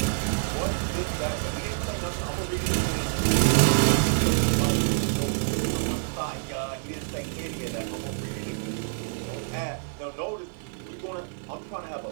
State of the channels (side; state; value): left; silent; digital silence